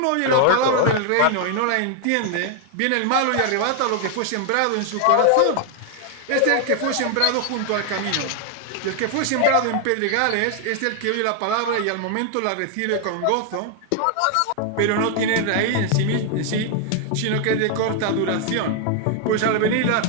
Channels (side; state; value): both; different; correlation 0.00